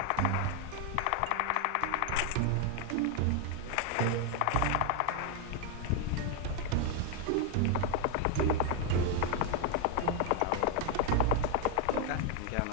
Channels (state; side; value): different; both; correlation 0.01